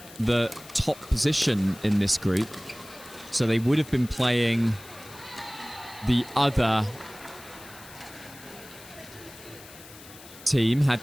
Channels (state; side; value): noise; left; hiss, 19 dB below the sound